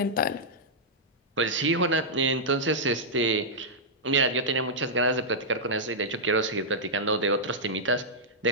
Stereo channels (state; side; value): normal; both; correlation -0.09